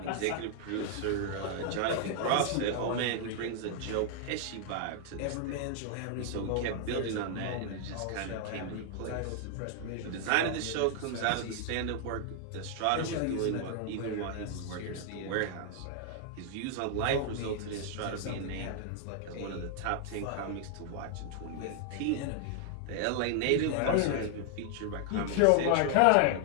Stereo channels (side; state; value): both; different; correlation 0.00